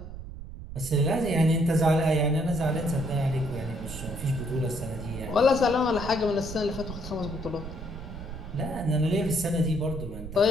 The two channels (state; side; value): noise; right; rumble, 11 dB below the sound